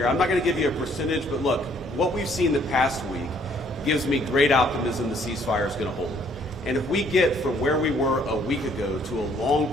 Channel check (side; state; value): both; normal; correlation 0.63